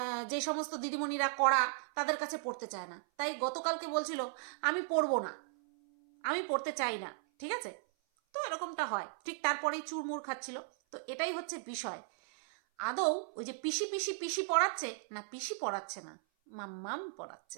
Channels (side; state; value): left; silent; 54 dB below the other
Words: যে সমস্ত দিদিমণিরা করা তাদের কাছে পড়তে চায় না, তাই গতকালকে বলছিল আমি পড়বো না, আমি পড়তে চাই না, ঠিক আছে? তো এরকমটা হয়, ঠিক তারপরেই চুরমুর খাচ্ছিল। তো এটাই হচ্ছে বিষয়, আদৌ ওই যে পিসি পিসি পিসি পড়াচ্ছে না, পিসি পড়াচ্ছে না, মাম্মাম